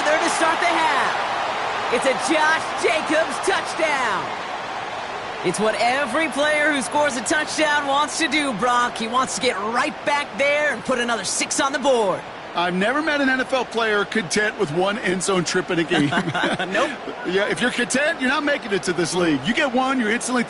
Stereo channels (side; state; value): both; identical; correlation 1.00